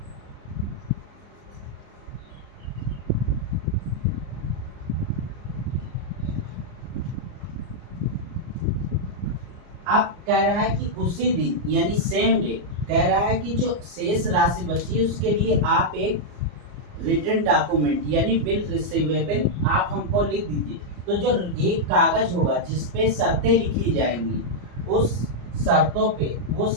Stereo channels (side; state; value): left; late; 34 ms